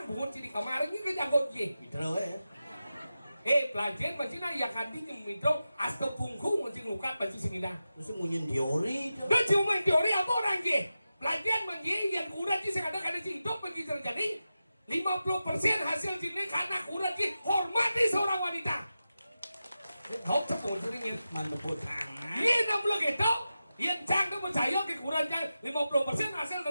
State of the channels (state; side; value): inverted; both; correlation -0.92